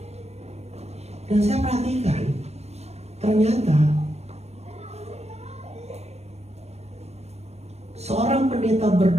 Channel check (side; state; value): left; late; 0.31 ms